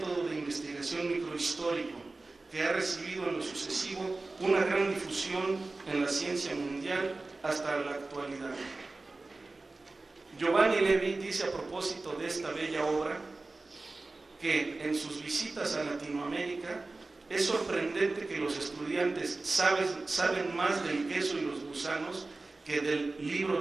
de investigación microhistórico, que ha recibido en lo sucesivo una gran difusión en la ciencia mundial hasta la actualidad. Giovanni Levi dice a propósito de esta bella obra que en sus visitas a Latinoamérica es sorprendente que los estudiantes saben más del queso y los gusanos que del libro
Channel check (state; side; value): quieter; left; 3.3 dB